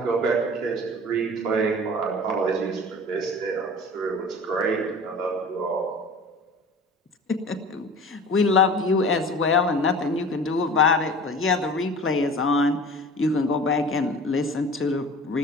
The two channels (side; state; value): both; normal; correlation 0.40